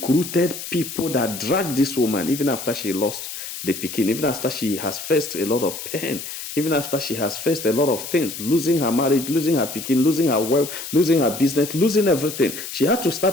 people that dragged this woman, even after she lost the pikin, even after she has faced a lot of pain, even after she has faced a lot of things, losing her marriage, losing her pikin, losing her wealth, losing her business, losing everything. She had to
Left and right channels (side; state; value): left; noise; hiss, 9 dB below the sound